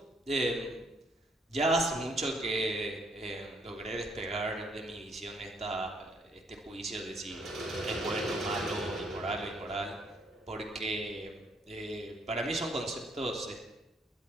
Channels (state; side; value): normal; both; correlation 0.68